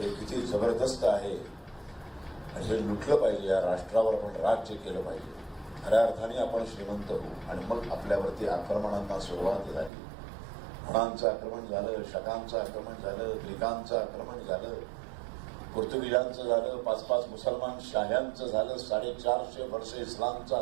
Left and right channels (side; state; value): left; drops out; at 9.9 s